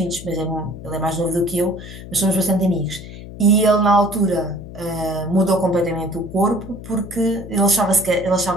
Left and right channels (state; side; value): noise; left; hum, 13 dB below the sound